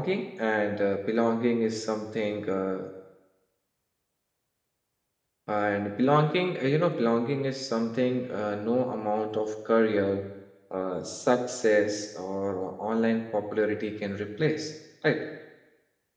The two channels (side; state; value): both; identical; correlation 1.00